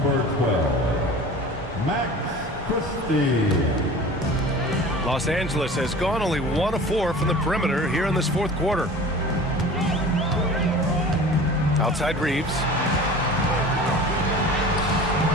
12, Max Christie. Los Angeles has gone only 1 of 4 from the perimeter here in this fourth quarter. Outside Reeves.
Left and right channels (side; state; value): both; normal; correlation 0.40